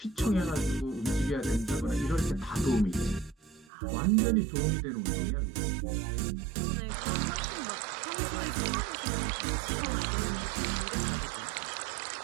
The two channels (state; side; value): drops out; left; at 3.7 s